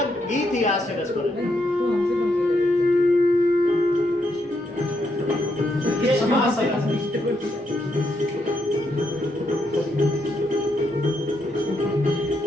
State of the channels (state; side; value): normal; both; correlation 0.78